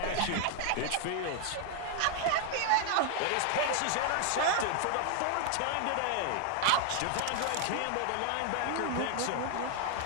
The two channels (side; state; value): both; different; correlation 0.00